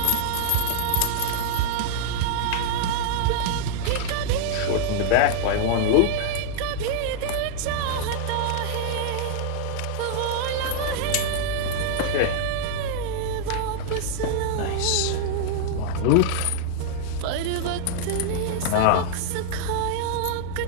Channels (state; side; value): different; both; correlation -0.01